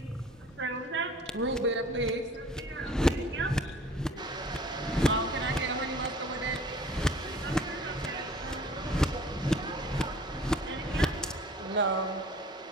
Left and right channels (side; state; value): both; normal; correlation 0.49